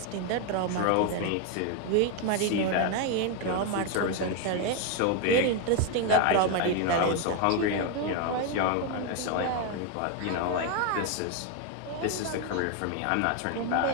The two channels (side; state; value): both; different; correlation 0.01